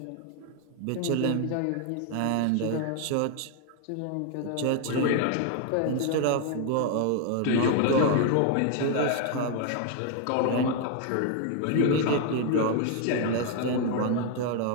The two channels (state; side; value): different; both; correlation 0.00